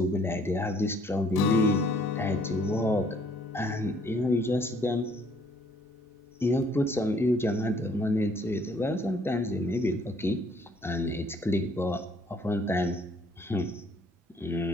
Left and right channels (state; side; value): normal; both; correlation 0.62